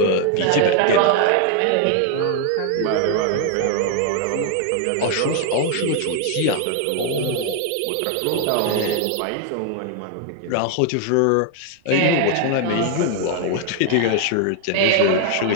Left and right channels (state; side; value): different; both; correlation 0.00